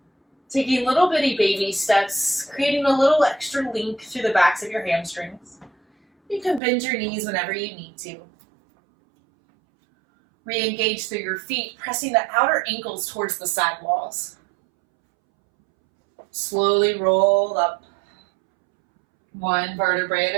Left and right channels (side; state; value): left; drops out; at 6.6 s